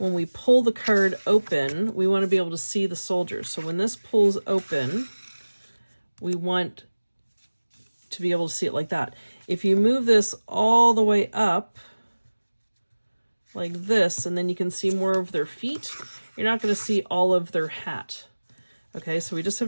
we pull the card open, we want to be able to see the soldiers. So when this pulls open, we want to be able to see it like that. If you move this all the way up like this, and then you can see more of their feet, you're not going to see all of their hat. Okay, so we just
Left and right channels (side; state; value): both; inverted; correlation -1.00